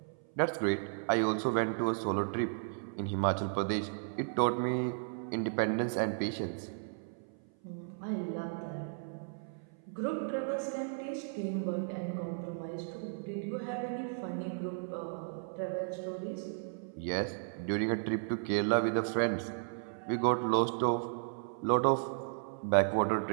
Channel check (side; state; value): left; silent; 55 dB below the other